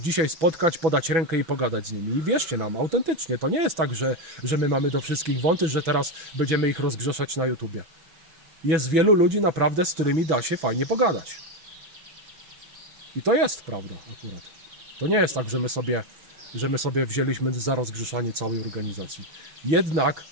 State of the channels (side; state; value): left; late; 6.1 ms